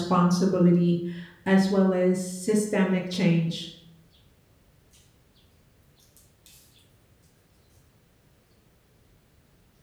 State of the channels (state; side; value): identical; both; correlation 1.00